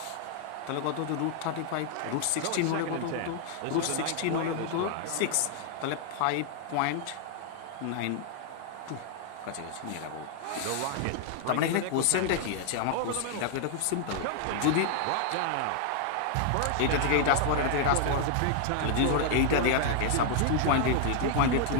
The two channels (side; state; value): both; different; correlation 0.00